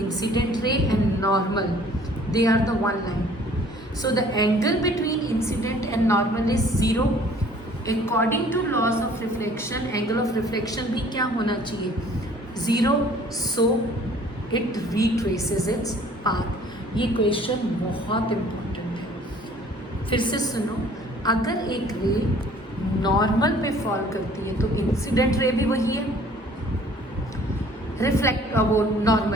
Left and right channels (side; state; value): both; normal; correlation 0.54